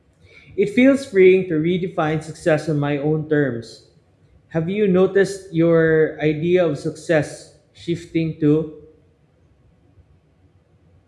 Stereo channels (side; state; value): both; identical; correlation 1.00